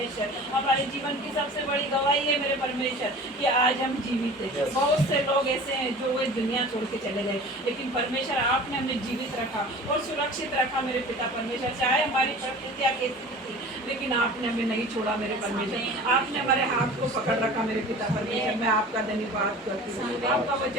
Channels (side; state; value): both; normal; correlation 0.40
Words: हमारे जीवन की सबसे बड़ी गवाही है मेरे परमेश्वर कि आज हम जीवित हैं। बहुत से लोग ऐसे हैं जो वे दुनिया छोड़ के चले गए, लेकिन परमेश्वर आपने हमें जीवित रखा और सुरक्षित रखा मेरे पिता परमेश्वर। चाहे हमारी परिस्थितियाँ कैसी थी, लेकिन आपने हमें नहीं छोड़ा मेरे परमेश्वर। आपने हमारे हाथ को पकड़ रखा मेरे पिता परमेश्वर। मैं आपका धन्यवाद करती हूँ। आपका